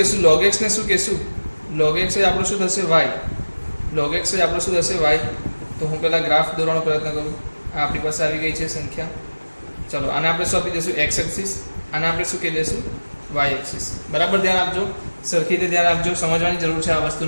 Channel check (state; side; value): inverted; both; correlation -1.00